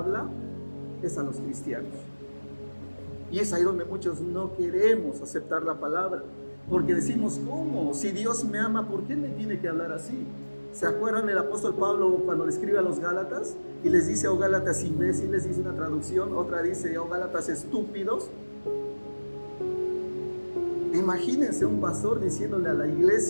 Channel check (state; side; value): inverted; both; correlation -1.00